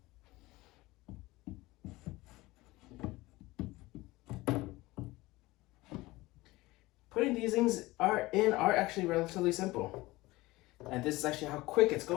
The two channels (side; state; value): right; quieter; 20.0 dB